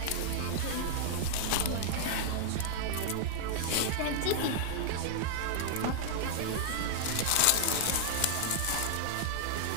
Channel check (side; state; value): both; different; correlation -0.01